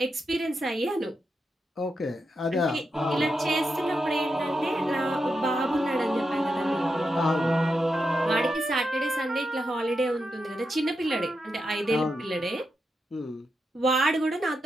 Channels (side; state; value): both; normal; correlation 0.86